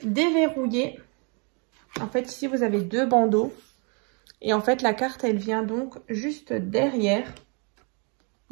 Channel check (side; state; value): left; quieter; 35.3 dB